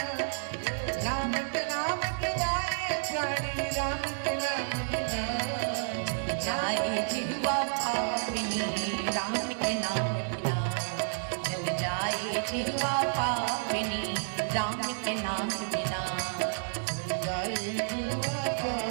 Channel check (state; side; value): silent; left; 57 dB below the other